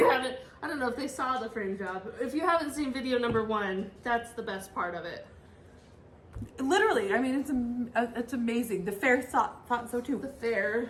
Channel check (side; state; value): both; identical; correlation 1.00